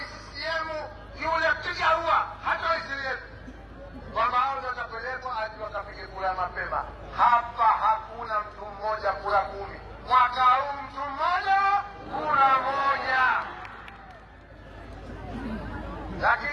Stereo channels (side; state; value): both; identical; correlation 1.00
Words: CCM, yule piga huwa hata waisilieni kwamba hao ndio watapelekwa hadi wakapige kura mapema. Hapa hakuna mtu mmoja kura 10. Mwaka huu mtu mmoja kura 1.